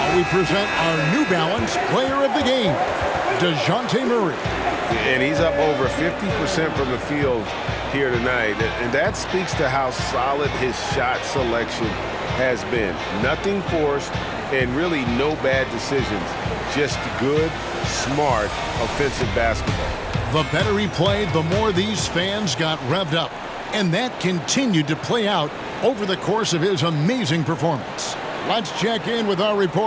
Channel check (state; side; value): identical; both; correlation 1.00